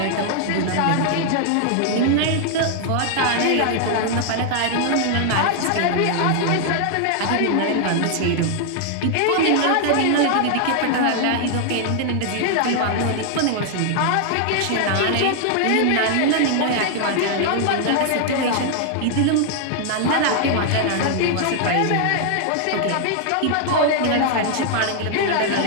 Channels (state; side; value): different; both; correlation 0.00